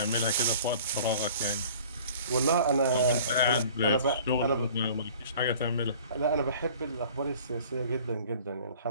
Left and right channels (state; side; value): inverted; both; correlation -0.48